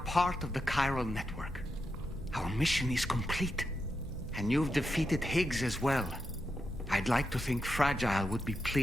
of the chiral network. Our mission is complete. And you've defeated Higgs as well. I'd like to think Fragile would be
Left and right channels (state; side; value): normal; both; correlation 0.86